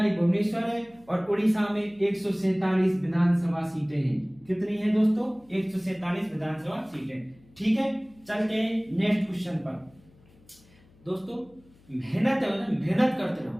भुवनेश्वर है। और उड़ीसा में 147 विधानसभा सीटें हैं। कितनी है दोस्तों? 147 विधानसभा सीटें, ठीक है। चलते हैं नेक्स्ट क्वेश्चन पर। दोस्तों, मेहनत है ना, मेहनत करते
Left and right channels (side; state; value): left; noise; hum, 28 dB below the sound